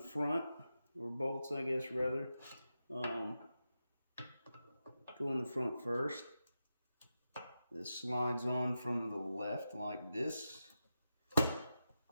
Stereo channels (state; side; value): inverted; both; correlation -0.89